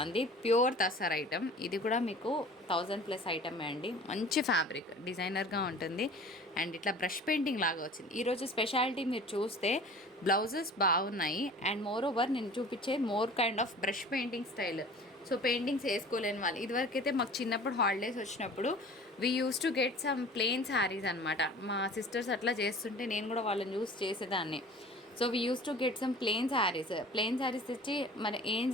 Pure tussar item. ఇది కూడా మీకు 1000+ ఐటమే అండి. మంచి ఫ్యాబ్రిక్, డిజైనర్గా ఉంటుంది. అండ్ ఇట్లా బ్రష్ పెయింటింగ్ లాగా వచ్చింది. ఈరోజు స్పెషాలిటీ మీరు చూస్తే బ్లౌజెస్ బాగున్నాయి. అండ్ మోర్ ఓవర్ నేను చూపించే more kind of brush painting style. So paintings వేసుకోలేని వాళ్ళు, ఇదివరకైతే మాకు చిన్నప్పుడు హాలిడేస్ వచ్చినప్పుడు we use to get some plain saris అనమాట. మా సిస్టర్స్ అట్లా చేస్తుంటే నేను కూడా వాళ్ళని యూస్ చేసేదాన్ని. So we use to get some plain saris తెచ్చి మరి ఏం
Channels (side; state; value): both; normal; correlation 0.44